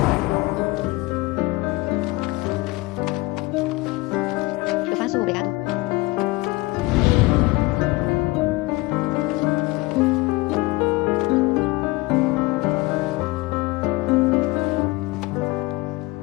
Eu faço, obrigado.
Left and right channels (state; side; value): quieter; right; 21.8 dB